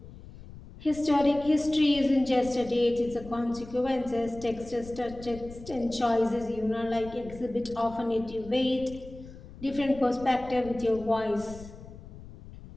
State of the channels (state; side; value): noise; left; rumble, 16 dB below the sound